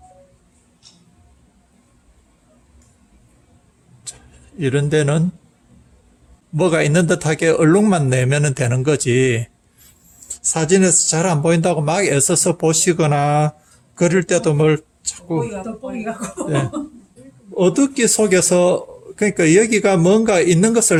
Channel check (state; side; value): identical; both; correlation 1.00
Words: 이런 데는 뭐가 있는 듯하게 얼룩만 내면 되는 거지 사진에서 잘 안 보인다고 막 애써서 보시거나 그럴 때도 뭘 자꾸 네. 어둡기 속에서 그러니까 여기가 뭔가 있는 것을